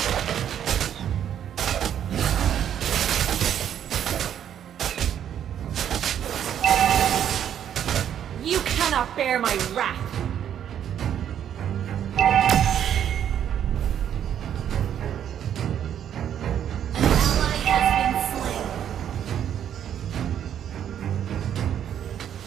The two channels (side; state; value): left; quieter; 9.6 dB